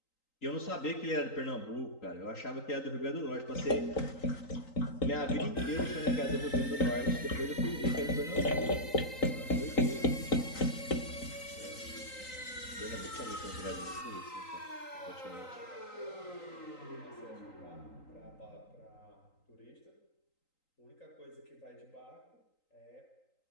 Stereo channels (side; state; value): right; late; 3.9 ms